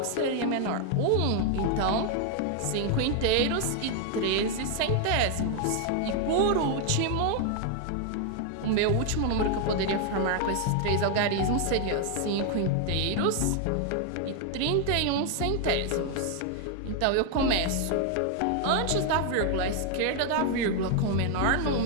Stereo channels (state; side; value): different; both; correlation 0.00